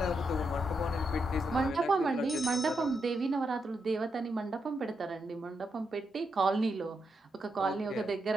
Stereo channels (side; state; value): both; normal; correlation 0.82